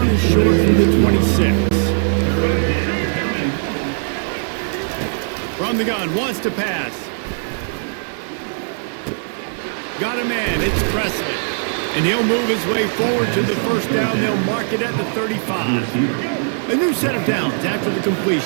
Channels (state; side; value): silent; left; digital silence